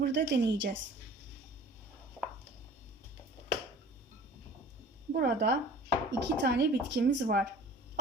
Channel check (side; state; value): both; normal; correlation 0.46